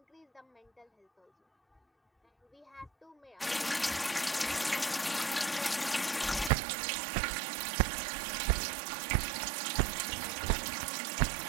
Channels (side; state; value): left; drops out; at 6.5 s